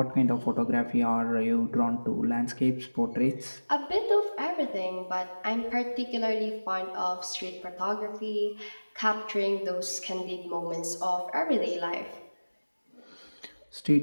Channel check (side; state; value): both; inverted; correlation -1.00